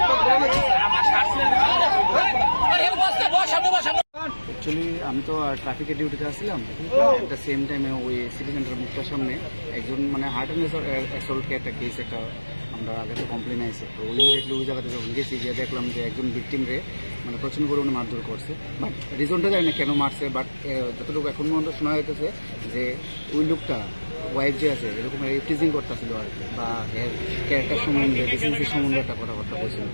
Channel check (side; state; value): both; inverted; correlation -1.00